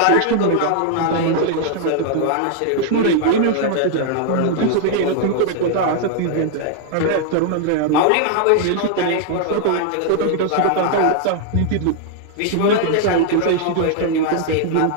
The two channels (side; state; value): both; different; correlation 0.00